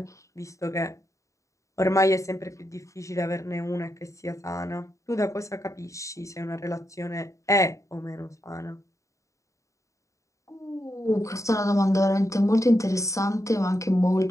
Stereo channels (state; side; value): late; right; 0.15 ms